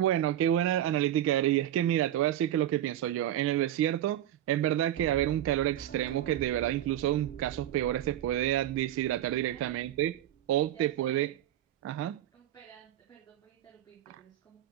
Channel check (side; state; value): left; quieter; 12.3 dB